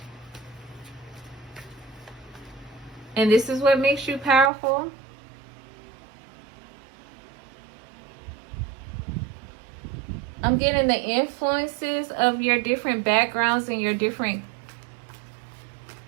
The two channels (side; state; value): left; drops out; at 4.5 s